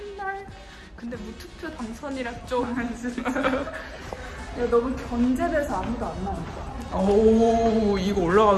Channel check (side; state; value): both; identical; correlation 1.00